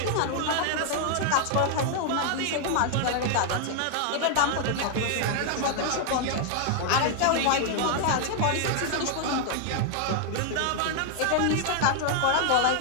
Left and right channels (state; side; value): different; both; correlation 0.00